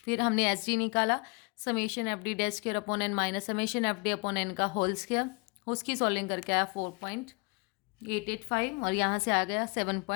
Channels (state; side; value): quieter; right; 29.8 dB